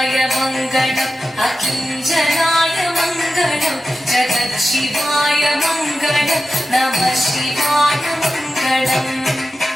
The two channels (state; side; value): normal; both; correlation 0.93